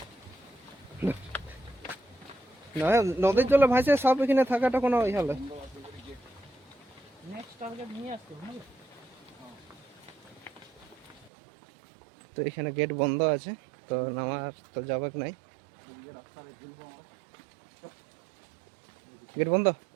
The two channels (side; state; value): left; drops out; at 11.3 s